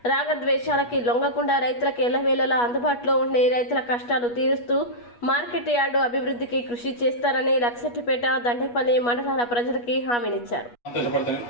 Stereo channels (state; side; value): late; right; 8.3 ms